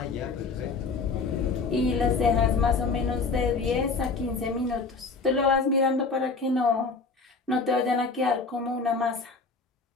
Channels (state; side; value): quieter; right; 4.3 dB